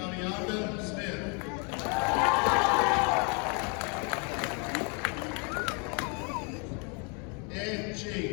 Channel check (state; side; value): quieter; right; 35.1 dB